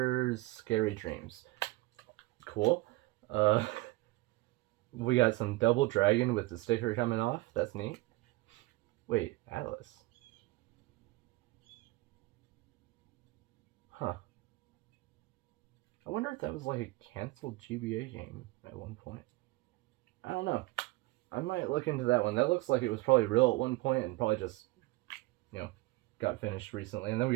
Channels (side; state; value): left; quieter; 21.0 dB